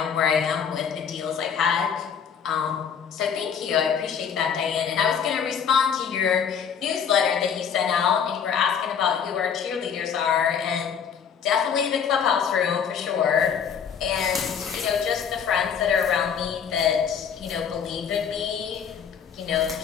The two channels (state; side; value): quieter; right; 7.4 dB